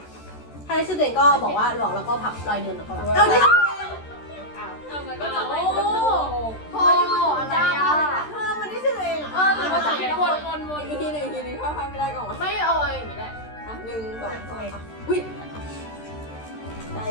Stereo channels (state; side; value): late; right; 13 ms